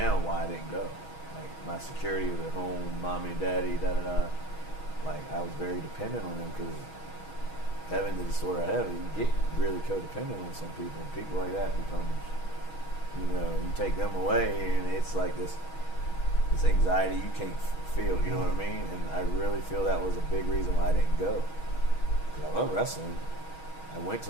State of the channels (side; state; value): right; late; 6.3 ms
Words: why I didn't go. Like my security was at home, mommy and daddy, da da da. Like I was very dependent on them because having the disorder I have, you get really codependent on some people. And people like that becomes, you know, you take them away and it's like this anxiety you can't feel. You know what I mean? And I really feel that was a big reason why I didn't go. Because I love wrestling. I went to